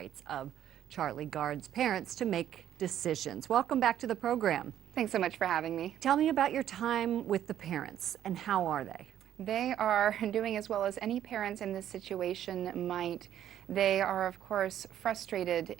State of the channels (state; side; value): quieter; left; 10.9 dB